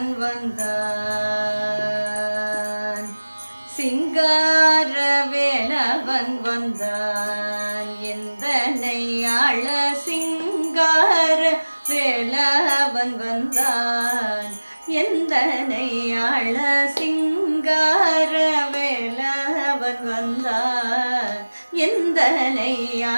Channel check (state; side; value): inverted; both; correlation -1.00